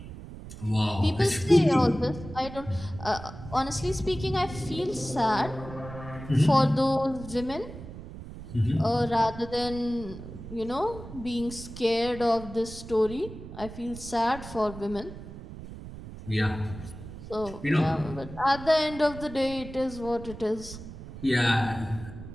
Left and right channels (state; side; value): noise; right; rumble, 13 dB below the sound